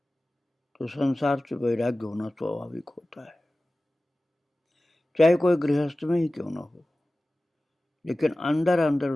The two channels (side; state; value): both; normal; correlation 0.96